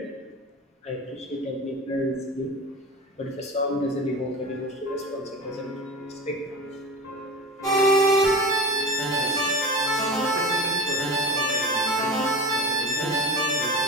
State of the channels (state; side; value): normal; both; correlation 0.31